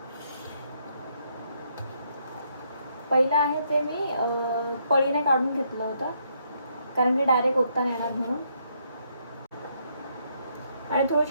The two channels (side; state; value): both; inverted; correlation -0.74